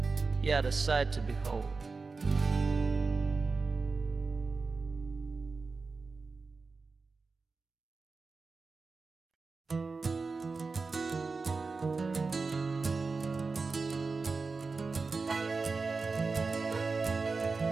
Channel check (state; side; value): quieter; left; 4.2 dB